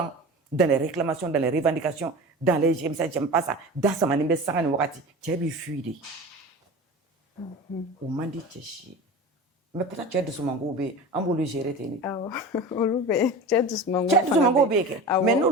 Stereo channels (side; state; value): both; normal; correlation 0.33